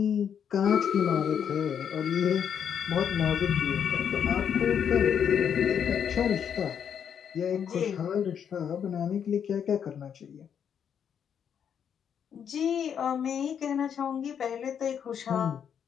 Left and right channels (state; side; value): quieter; right; 8.1 dB